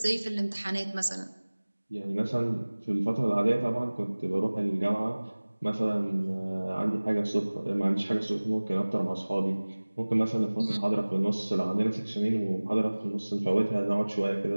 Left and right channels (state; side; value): inverted; both; correlation -1.00